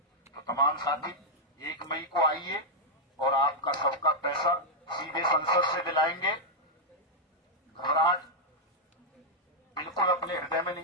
तो तमाम साथी 1 मई को आइए और आपका सबका पैसा सीधे संसद से दिलाएंगे। घबराहट बिल्कुल अपने हृदय में नहीं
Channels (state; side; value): normal; both; correlation -0.04